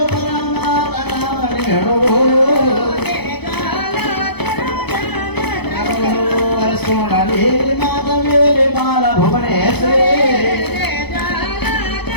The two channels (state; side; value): late; right; 0.98 ms